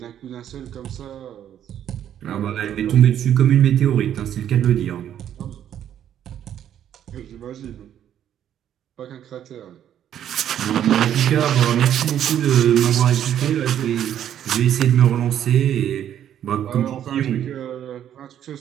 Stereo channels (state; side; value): quieter; left; 10.3 dB